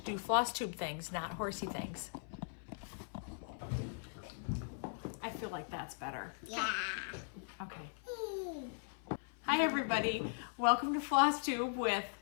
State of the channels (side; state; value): right; silent; 52 dB below the other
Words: do Flosstube things, not horsey things. I feel like that's better. Yeah. Okay. Hi everybody. Welcome to Flosstube with